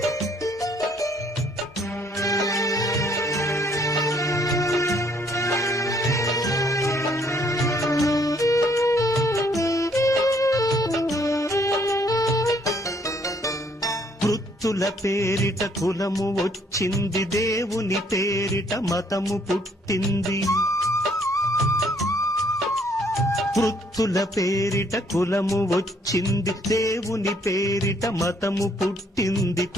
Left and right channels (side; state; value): both; normal; correlation 0.66